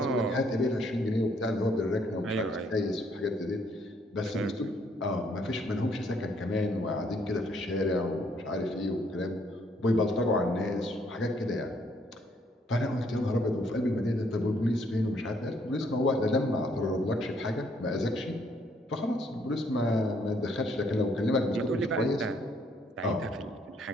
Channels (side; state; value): both; normal; correlation 0.68